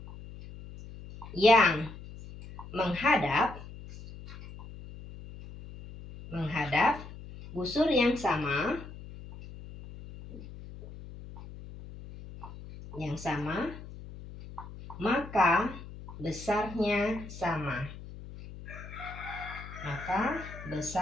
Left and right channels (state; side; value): noise; left; hum, 14 dB below the sound